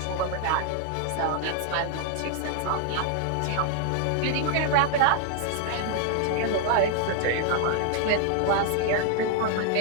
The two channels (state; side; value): different; both; correlation 0.00